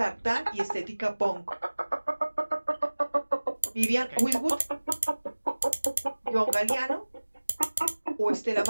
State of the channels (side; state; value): both; inverted; correlation -1.00